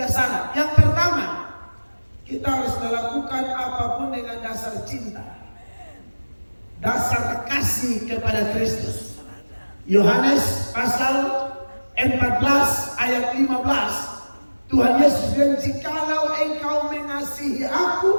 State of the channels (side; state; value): both; inverted; correlation -1.00